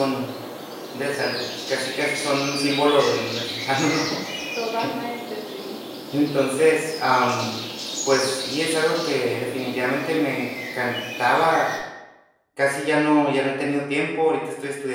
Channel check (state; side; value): identical; both; correlation 1.00